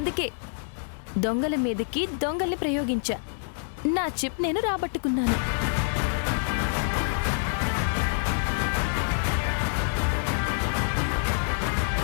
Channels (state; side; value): silent; right; 60 dB below the other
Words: దొంగల మీదకి దొంగల్ని ప్రయోగించా. నా చిప్ నేను రాబట్టుకున్నాను.